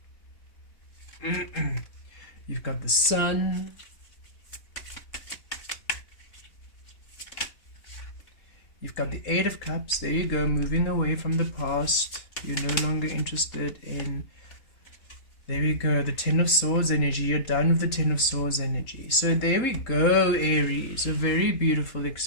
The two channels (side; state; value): right; late; 3.8 ms